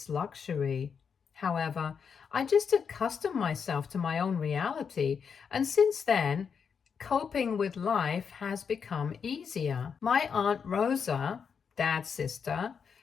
luxury. However, I just accustomed myself to my own reality, and since then, coping with life has become easier. My Aunt Rosa, Dad's sister,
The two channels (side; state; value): right; quieter; 6.5 dB